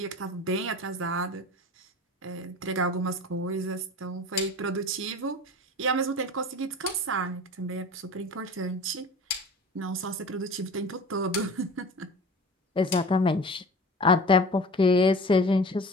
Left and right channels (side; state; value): both; normal; correlation 0.38